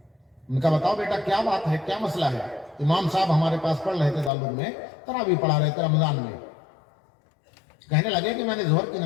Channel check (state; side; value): drops out; right; at 4.3 s